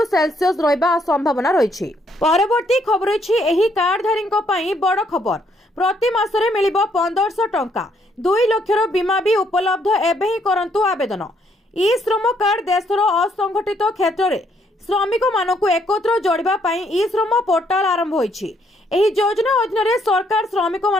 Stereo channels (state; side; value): normal; both; correlation 0.70